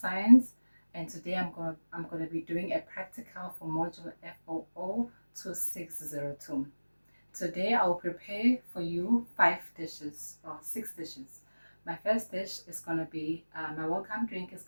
and today I'm going to be doing a practical for module FOO2602. Today I'll prepare for you 6 dishes. My first dish is going to be, my welcome drink is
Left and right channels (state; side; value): inverted; both; correlation -1.00